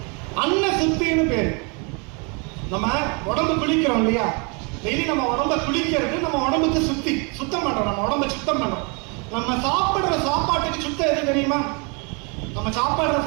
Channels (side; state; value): left; quieter; 33.2 dB